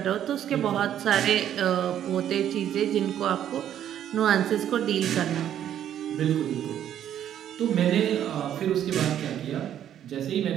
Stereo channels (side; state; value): left; quieter; 10.5 dB